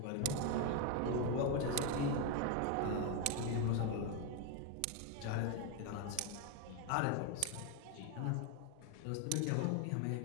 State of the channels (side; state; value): both; different; correlation 0.01